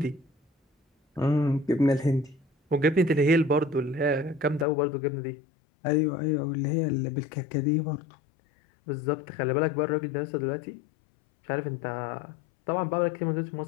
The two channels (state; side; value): drops out; right; at 4.7 s